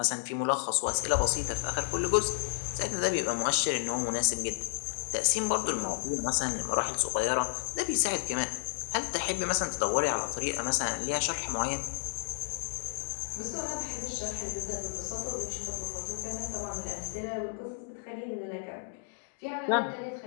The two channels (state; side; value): silent; right; digital silence